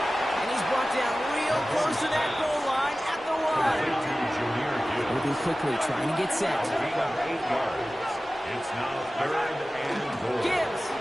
And he's brought down real close to that goal line at the 1. Moving quickly, trying to get set. Gain of 8 yards. It's now third and goal. Gibbs.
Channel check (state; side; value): normal; both; correlation 0.96